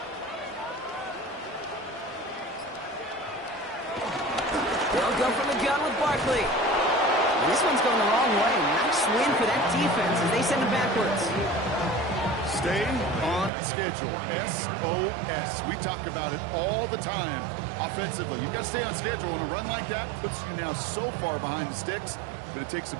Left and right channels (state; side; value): drops out; left; at 13.5 s